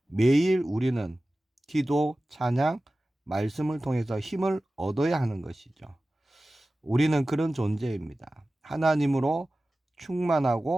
매일 우리는 기도, 찬양, 말씀을 통해서 힘을 얻어야 하는 것이죠. 우리는 그런 존재입니다. 하나님으로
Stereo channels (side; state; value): both; normal; correlation 0.96